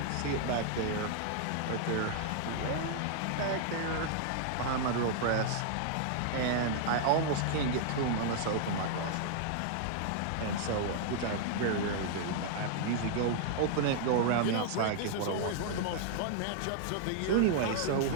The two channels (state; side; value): different; both; correlation -0.01